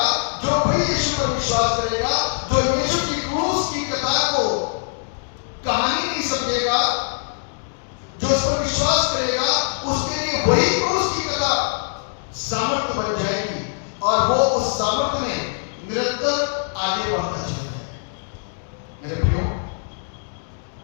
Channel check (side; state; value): right; silent; digital silence